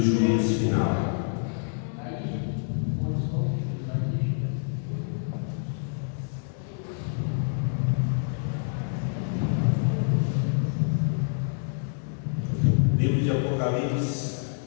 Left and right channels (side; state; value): right; silent; digital silence